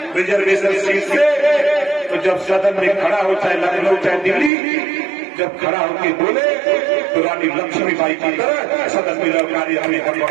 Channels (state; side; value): drops out; left; at 4.5 s